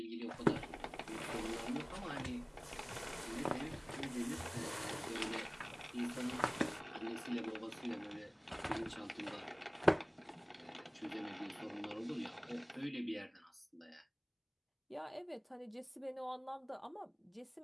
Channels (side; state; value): both; identical; correlation 1.00